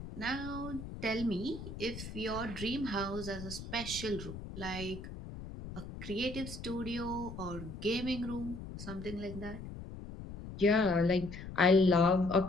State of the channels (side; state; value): left; noise; rumble, 10 dB below the sound